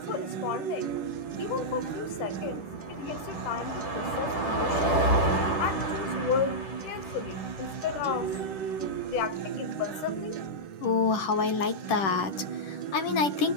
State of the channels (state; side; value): late; right; 10 ms